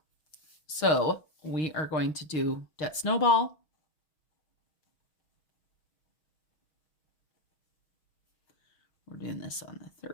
So we are going to do debt snowball. We're doing this on the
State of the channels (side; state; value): right; late; 6.3 ms